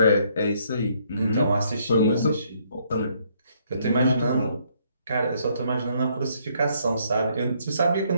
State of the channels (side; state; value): both; inverted; correlation -0.69